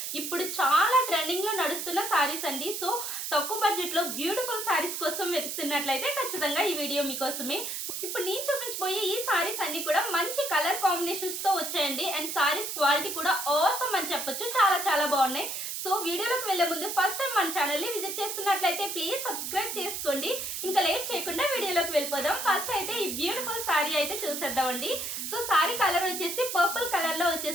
ఇప్పుడు చాలా ట్రెండింగ్ లో నడుస్తున్న సారీస్ అండి. సో తక్కువ బడ్జెట్ లో బ్యూటిఫుల్ సారీస్ కోసం వెతుకుతున్నట్లయితే ఖచ్చితంగా ఈ వీడియో మీకోసమే. ఇప్పుడు నేను చూపించబోయే ఈ సారీస్ అన్ని కూడా మంచి కలర్ కాంబినేషన్స్ తో వచ్చాయండి. అండ్ సారీస్ క్వాలిటీ కూడా ఆసమ్ అని చెప్పొచ్చు, చాలా చాలా బాగున్నాయి. సో వీడియోలోకి వెళ్లే ముందు ఫస్ట్ టైం మన ఛానల్ ని విజిట్ చేస్తున్నట్లయితే ప్లీజ్ సబ్స్క్రైబ్ చేసుకోండి. ఇంకా లేట్ చేయకుండా వీడియోలోకి వెళ్ళిపోదాం. ఫస్ట్ అయితే ఈ బ్యూటిఫుల్ సారీ అయితే చూసేద్దామండి. సో సారీ కలర్ వచ్చేసి పర్పుల్ కలర్ లో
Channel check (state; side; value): noise; right; hiss, 4 dB below the sound